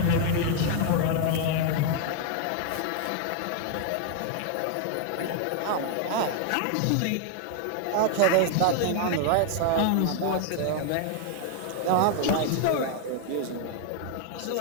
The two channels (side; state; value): both; different; correlation 0.00